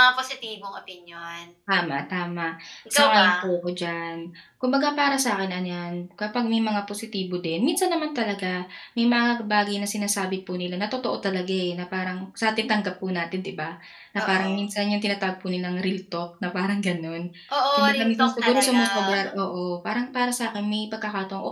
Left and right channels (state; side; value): identical; both; correlation 1.00